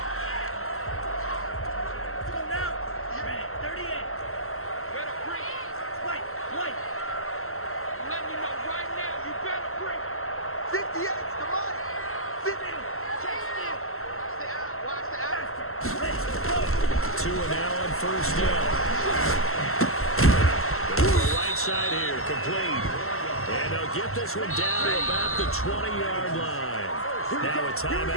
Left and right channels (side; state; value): right; late; 0.62 ms